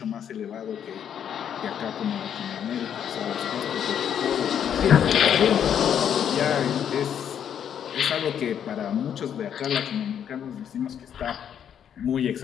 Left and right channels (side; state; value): right; quieter; 8.9 dB